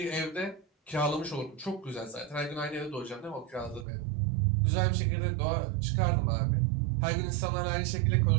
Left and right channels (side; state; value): left; drops out; at 3.9 s